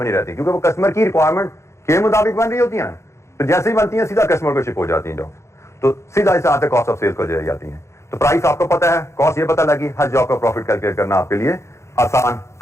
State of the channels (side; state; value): right; late; 0.14 ms